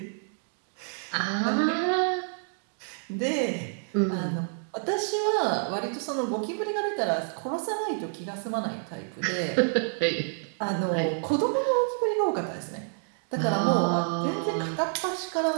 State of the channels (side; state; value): left; silent; 59 dB below the other